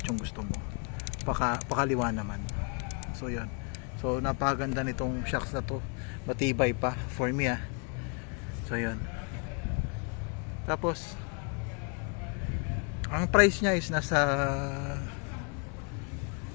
yung gusto mo. Pakaliwa naman. So yun. So napakaganda nitong shocks na to. Matibay pa for me ah. So yun. Tapos ang price niya is nasa,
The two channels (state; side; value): quieter; right; 37.7 dB